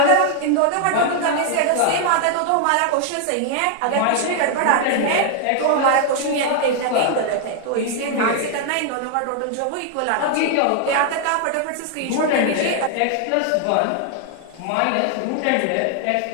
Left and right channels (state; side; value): different; both; correlation 0.00